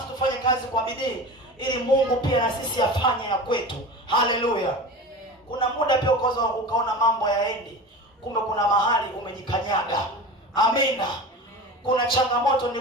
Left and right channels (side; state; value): both; normal; correlation 0.32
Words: kazi kwa bidii ili Mungu pia na sisi afanye ya kwetu. Haleluya. Kuna muda pia ukaona mambo yaendi, kumbe kuna mahali umejikanyaga. Amina. Kuna changamoto